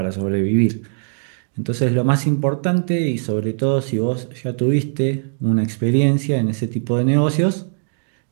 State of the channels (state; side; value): silent; left; digital silence